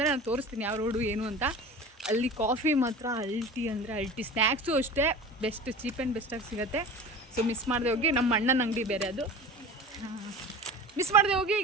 ನಾನು ತೋರಿಸ್ತೀನಿ ಯಾವ ರೋಡು ಏನು ಅಂತ. ಅಲ್ಲಿ ಕಾಫಿ ಮಾತ್ರ ಅಲ್ಟಿ ಅಂದರೆ ಅಲ್ಟಿ, ಸ್ನ್ಯಾಕ್ಸು ಅಷ್ಟೇ ಬೆಸ್ಟ್, ಚೀಪ್ ಆ್ಯಂಡ್ ಬೆಸ್ಟಾಗಿ ಸಿಗುತ್ತೆ. ಸೊ ಮಿಸ್ ಮಾಡದೆ ಹೋಗಿ. ನಮ್ಮ ಅಣ್ಣನ ಅಂಗಡಿ ಬೇರೆ ಅದು, ಮಿಸ್ ಮಾಡದೆ ಹೋಗಿ.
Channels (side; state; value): both; normal; correlation 0.36